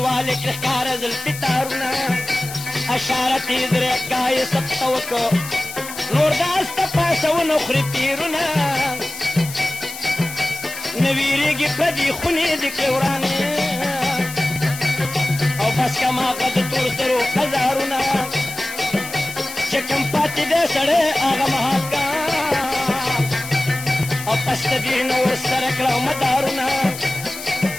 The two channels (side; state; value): left; noise; hiss, 11 dB below the sound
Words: کې ښکاره زلفې تارونه اشارت یې درېږه یې سبته وکړه نور داس ته پاسونه خوري تیرونه نه ویرېږي پردي خونې د کې ورانې او بس کماغه د تور سرو هزارونه چې کوم پاتې دی سړی هغه مهاکا او پس د دې نه ورسره کړه مدارونه